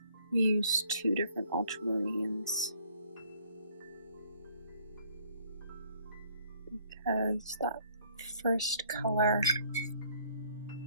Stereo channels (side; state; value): both; inverted; correlation -0.62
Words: We used 2 different ultramarines because that first color